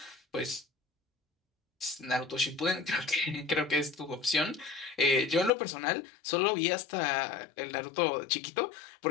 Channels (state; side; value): drops out; right; at 5.5 s